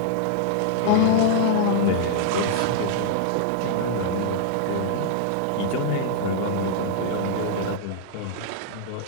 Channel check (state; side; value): different; both; correlation -0.01